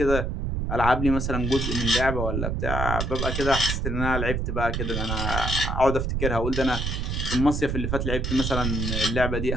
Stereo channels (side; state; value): right; noise; rumble, 1 dB below the sound